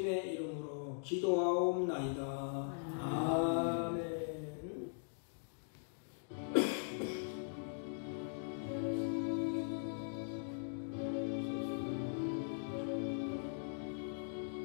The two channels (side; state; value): right; silent; digital silence